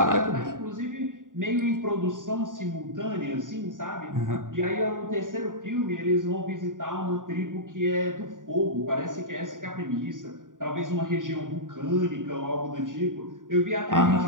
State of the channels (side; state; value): left; late; 0.88 ms